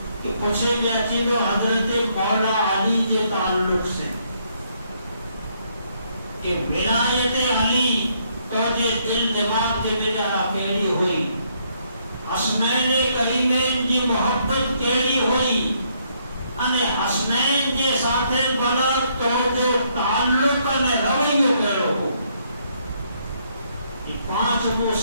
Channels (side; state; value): both; inverted; correlation -0.71